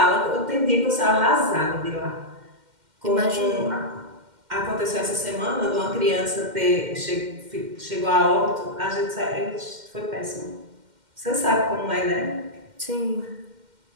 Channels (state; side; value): late; left; 2.1 ms